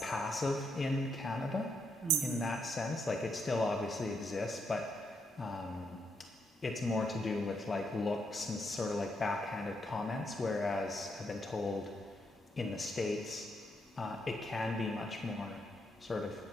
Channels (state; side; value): normal; both; correlation 0.77